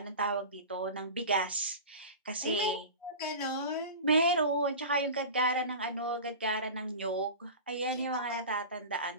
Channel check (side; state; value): both; inverted; correlation -0.32